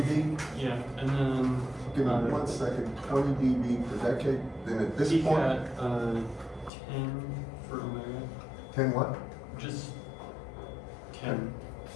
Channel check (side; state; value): right; drops out; at 6.7 s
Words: Yeah, and then. Give me 1 second. 20 dB per decade. Then at this peak point. at 10 for omega. 10 what? Just 10.